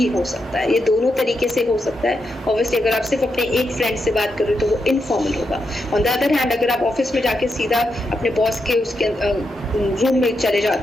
हो सकता है, ये दोनों तरीके से हो सकता है। ऑब्वियसली अगर आप सिर्फ अपने एक फ्रेंड से बात कर रहे हो तो वो इनफॉर्मल होगा। ऑन द अदर हैंड अगर आप ऑफिस में जाके सीधा अपने बॉस के उसके रूम में चले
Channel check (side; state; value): both; normal; correlation 0.84